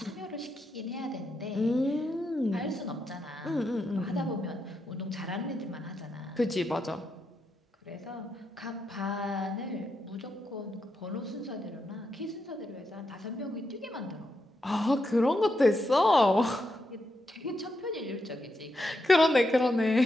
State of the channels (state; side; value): normal; both; correlation 0.83